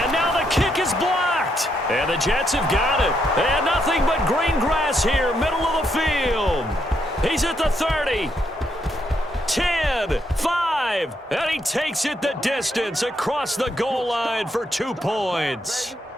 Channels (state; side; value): normal; both; correlation 0.77